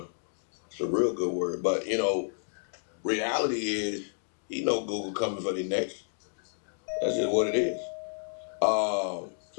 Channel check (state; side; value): silent; right; digital silence